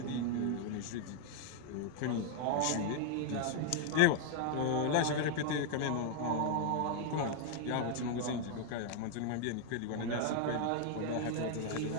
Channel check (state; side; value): different; both; correlation 0.00